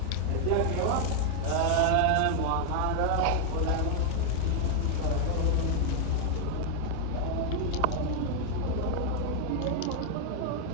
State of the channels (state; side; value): different; both; correlation 0.00